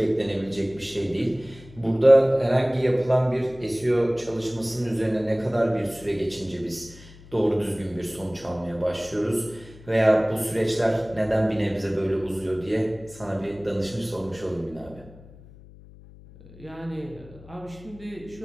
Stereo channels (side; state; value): left; noise; hum, 20 dB below the sound